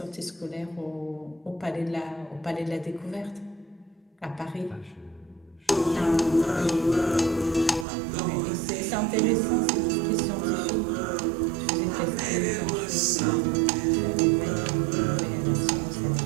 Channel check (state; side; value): drops out; left; at 7.9 s